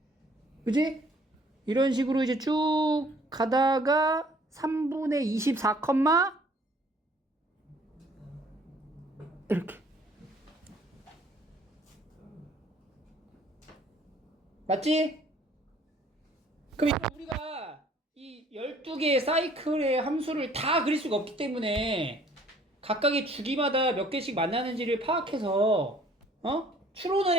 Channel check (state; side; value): normal; both; correlation 0.57